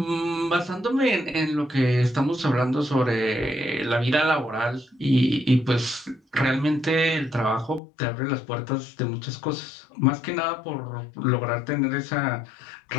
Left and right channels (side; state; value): right; drops out; at 7.8 s